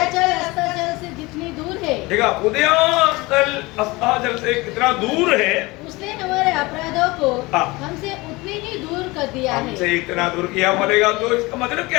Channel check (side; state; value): right; quieter; 22.7 dB